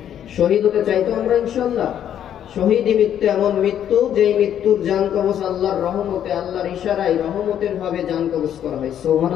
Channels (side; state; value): right; quieter; 10.0 dB